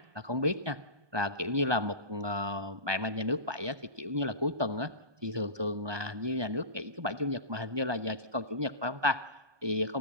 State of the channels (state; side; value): late; left; 1.2 ms